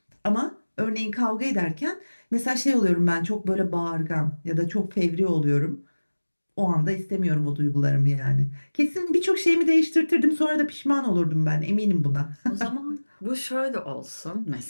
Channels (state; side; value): inverted; both; correlation -1.00